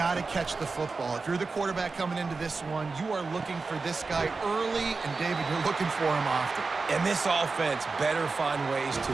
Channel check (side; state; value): left; quieter; 4.2 dB